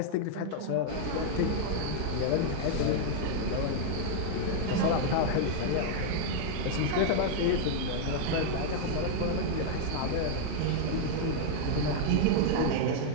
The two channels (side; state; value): both; different; correlation -0.01